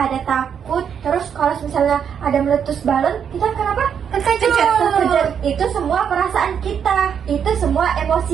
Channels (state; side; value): quieter; left; 7.8 dB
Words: takut. Terus kalau misalnya ada meletus balon, kita kenapa? Terkejut. Itu semua perasaan kita. Itu semua